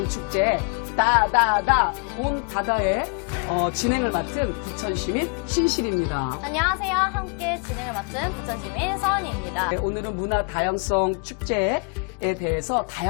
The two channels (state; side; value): quieter; right; 37.8 dB